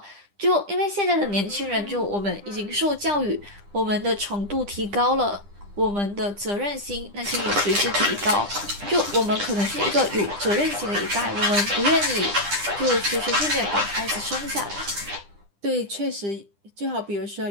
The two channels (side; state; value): left; late; 10 ms